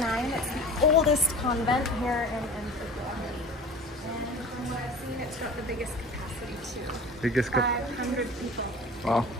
It's the oldest convent here in Antigua. And from what I've seen, it's got the biggest capacity too. Biggest 500 people. Wow,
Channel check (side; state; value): both; normal; correlation 0.39